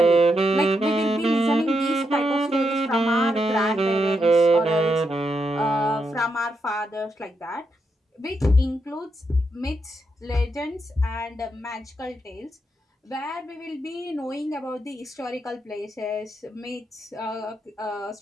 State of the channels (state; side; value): normal; both; correlation 0.82